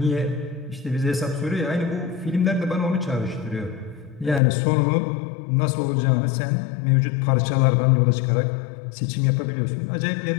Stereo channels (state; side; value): drops out; right; at 4.4 s